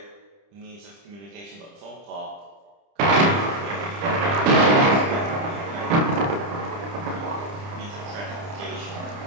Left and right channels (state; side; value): late; left; 30 ms